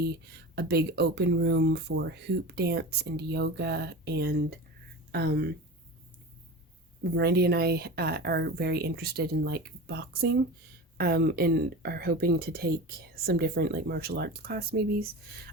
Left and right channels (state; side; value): normal; both; correlation 0.30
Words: a big open room for hoop dance and yoga. And Randy and I are very interested in like boxing, and are hoping to take some different like martial arts class maybe.